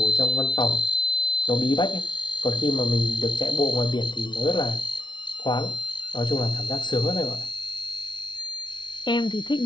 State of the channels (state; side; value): late; right; 0.22 ms